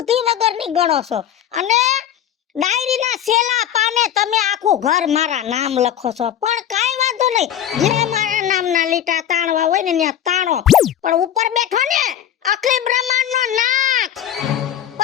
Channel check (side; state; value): right; quieter; 10.5 dB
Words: વગરની ગણો છો અને ડાયરીના છેલ્લા પાને તમે આખું ઘર મારા નામ લખો છો પણ કાઈ વાંધો નહીં જ્યાં મારા નામના લીટા તાણવા હોય ને ત્યાં તાણો પણ ઉપર બેઠો ને અખિલ બ્રહ્માંડનો નાથ